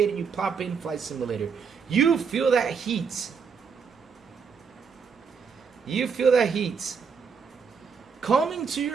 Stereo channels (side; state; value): left; quieter; 6.0 dB